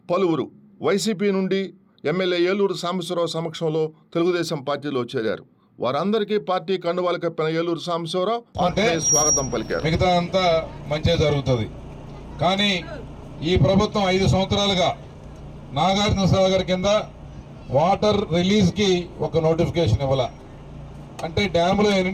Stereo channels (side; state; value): both; identical; correlation 1.00